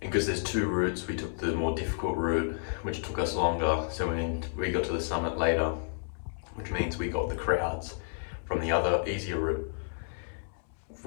and because there's 2 routes, we took the more difficult route, which took us longer. So we got to the summit later, which means we got the crowds from the other easier route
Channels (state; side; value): silent; right; 57 dB below the other